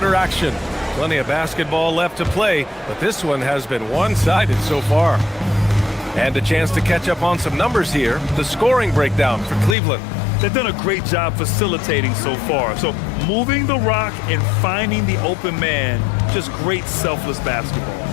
action. Plenty of basketball left to play, but this one has been one-sided so far. And a chance to catch up on some numbers here. The scoring breakdown for Cleveland. They've done a great job facilitating so far. So moving the rock and finding the open man, just great selfless basketball.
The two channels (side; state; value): right; drops out; at 9.8 s